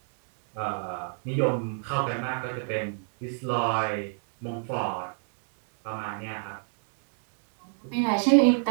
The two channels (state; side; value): silent; left; digital silence